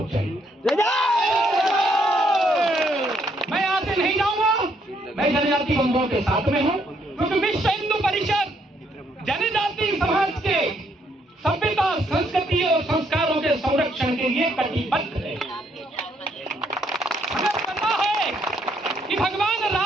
जाएंगे। मैं यहां से नहीं जाऊंगा, मैं जनजाति बंधुओं के साथ में हूं, क्योंकि विश्व हिंदू परिषद जनजाति समाज के सभ्यता, संस्कृति और संस्कारों के संरक्षण के लिए कटिबद्ध है। हमें पता है कि भगवान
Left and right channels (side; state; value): both; normal; correlation 0.71